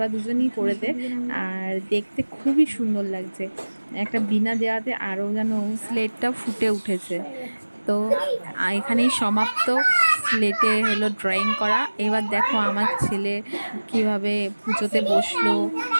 দুজনই করে দে। আর দেখতে খুবই সুন্দর লাগছে, একটা বিনা দেওয়াতে আরও যেন স্লেটটা ফুটে উঠেছে। তো এখানেই সমাপ্ত স্লেটে হলো ড্রয়িং করা। এবার দেখো আমার ছেলে কিভাবে পুজোতে বসলো,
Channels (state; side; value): inverted; both; correlation -1.00